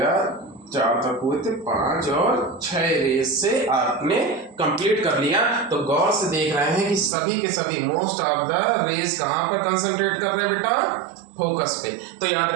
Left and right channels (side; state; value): left; drops out; at 7.1 s